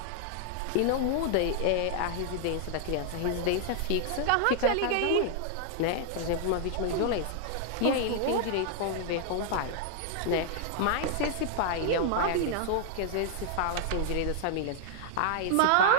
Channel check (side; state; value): both; different; correlation -0.01